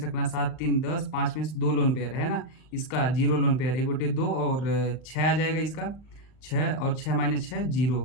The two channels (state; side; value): late; right; 39 ms